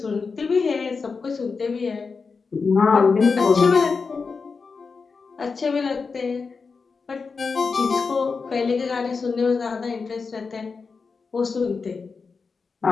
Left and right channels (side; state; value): right; quieter; 4.8 dB